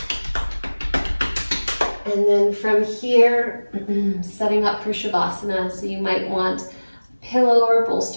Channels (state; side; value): inverted; both; correlation -1.00